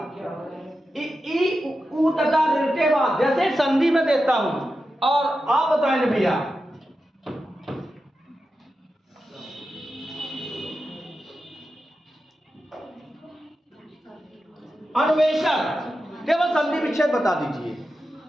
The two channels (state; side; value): normal; both; correlation 0.90